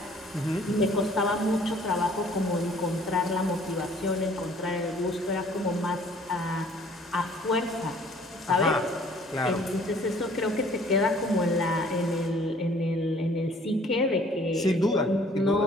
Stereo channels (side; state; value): both; normal; correlation 0.56